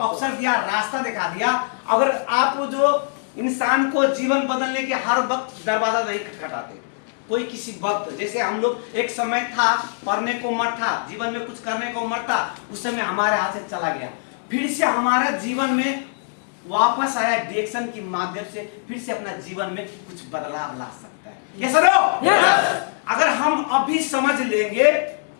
दिया, रास्ता दिखा दिया। अगर आप जो इंसान को जीवन बदलने के हर वक्त दरवाजा नहीं खटखटाते, कोई किसी वक्त, जैसे हम लोग एक समय था पढ़ने को उम्र था, जीवन में कुछ करने को उम्र था, उस समय हमारे हाथ से चला गया, फिर से हमारा जीवन में वापस आया, डिएक्शन के माध्यम से फिर से अपना जीवन में कुछ बदलाव ला सकता है। ये सरो अगर हम अभी समझ लेंगे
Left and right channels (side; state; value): right; silent; 61 dB below the other